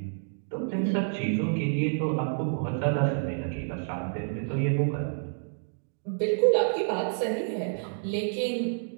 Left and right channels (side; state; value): left; silent; digital silence